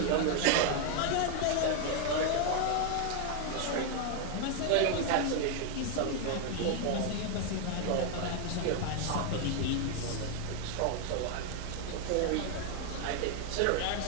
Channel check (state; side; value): different; both; correlation 0.00